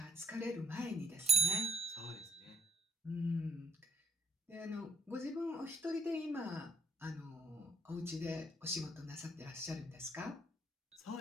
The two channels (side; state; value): both; normal; correlation 0.67